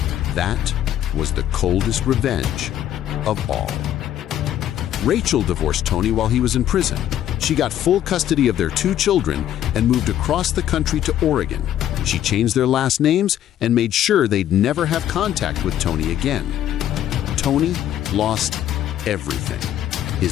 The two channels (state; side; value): quieter; right; 11.4 dB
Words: That was the coldest revenge of all. Rachel divorced Tony while he was in prison. She got full custody of their 2 children and moved across the country to Oregon. She changed their last names and made sure they'd never have contact with Tony again. Tony lost everything.